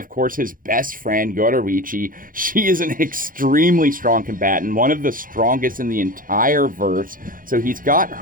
course, his best friend, Yoruichi. She is an extremely strong combatant, one of the strongest in the entire verse. So he's got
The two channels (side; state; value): left; late; 0.40 ms